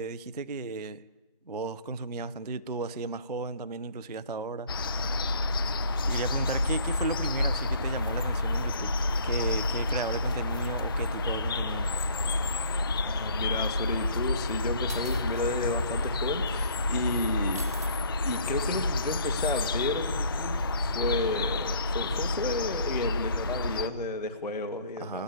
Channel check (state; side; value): inverted; both; correlation -0.55